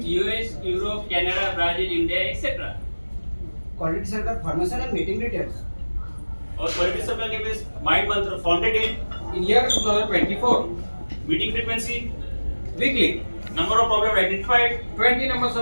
US, Europe, Canada, Brazil, India, etc. Quality centre pharmacy and meeting details Our quality supply name is Mind Mantra, founded In year 2024, in meeting frequency, weekly, number of problems identified, 20 numbers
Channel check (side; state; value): both; inverted; correlation -1.00